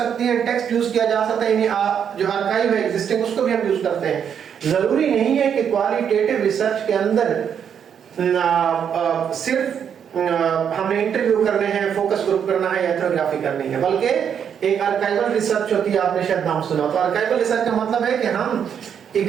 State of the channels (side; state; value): left; quieter; 8.0 dB